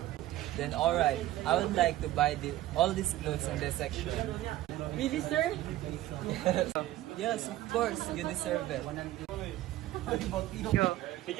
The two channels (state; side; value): quieter; left; 15.1 dB